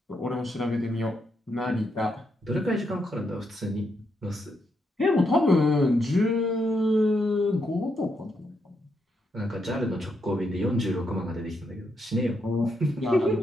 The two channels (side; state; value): both; normal; correlation 0.80